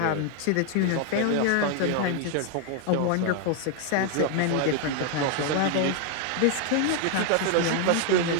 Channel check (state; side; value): different; both; correlation 0.00